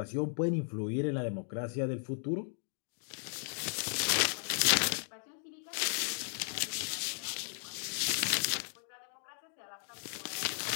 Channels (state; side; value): silent; right; 54 dB below the other